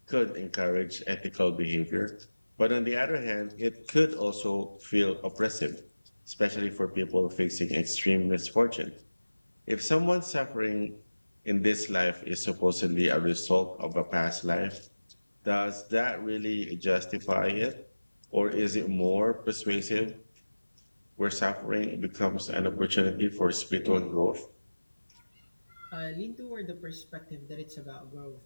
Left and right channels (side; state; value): both; inverted; correlation -1.00